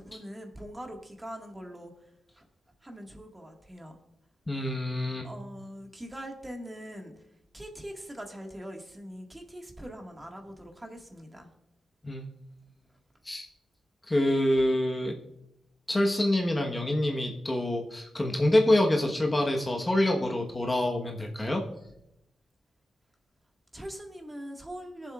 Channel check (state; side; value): normal; both; correlation 0.94